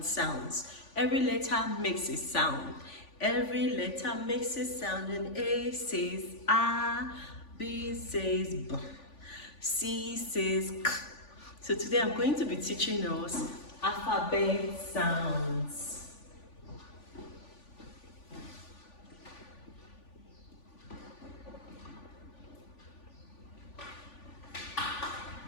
sounds. Every letter makes a sound. Every letter makes a sound, and A says A, B says B, C says K. So today I'm going to be teaching us alphabet sounds.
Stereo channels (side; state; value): right; late; 3.5 ms